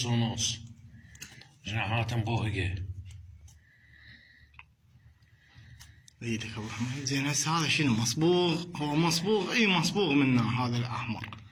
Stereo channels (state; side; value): identical; both; correlation 1.00